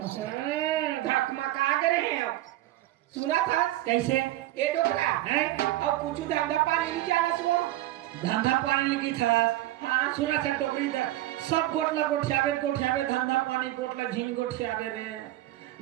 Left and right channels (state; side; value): quieter; left; 15.7 dB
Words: धकमका गए हैं। सुना था कैसे ये डोकरा है और कुछ धंधा पानी नहीं जाना सुनो। धंधा पानी लगी था हाँ सुना था डोकरी दा सब गोटला गोठियावे धंधा पानी गोटला झीन गोठियावे रे